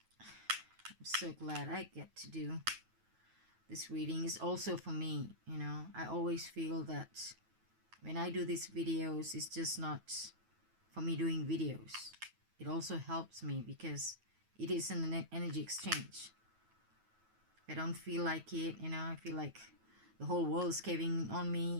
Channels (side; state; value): left; late; 9.2 ms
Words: I'm so glad I get to do this reading. Is also for me, you know. I always feel that when I do these videos, it's just not for me doing videos. It also helps me because it is an energy exchange. If I don't feel like it, you know, I feel like the whole world is caving on